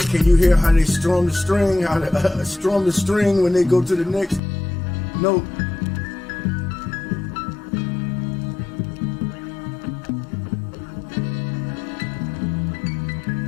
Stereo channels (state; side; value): drops out; right; at 4.4 s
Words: Can you hear how they strum the string? How they strum the string when they go to the next note?